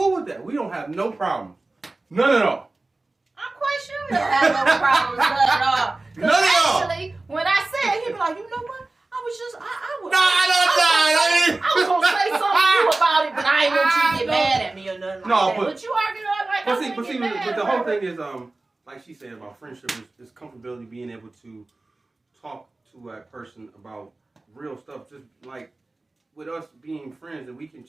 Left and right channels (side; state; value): left; quieter; 3.1 dB